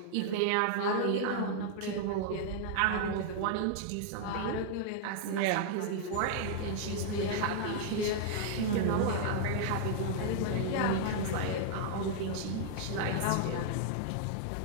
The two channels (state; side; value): different; both; correlation -0.01